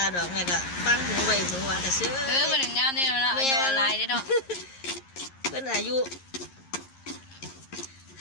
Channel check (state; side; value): late; right; 11 ms